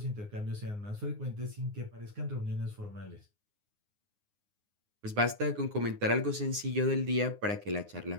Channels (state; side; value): late; left; 9.6 ms